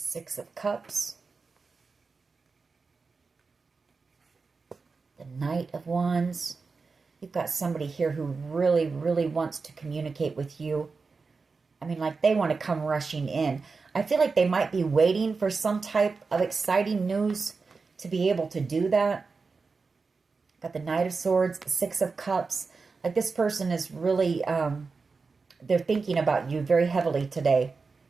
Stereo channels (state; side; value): quieter; left; 4.5 dB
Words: of Cups. The Knight of Wands. You've got somebody here who really, really wants to communicate with you. I mean, like they want to come rushing in. I feel like they might be waiting for some type of exciting news to be able to do that. Got the Knight of Swords, the Six of Cups. Like this person is really, they're thinking about you very heavily today.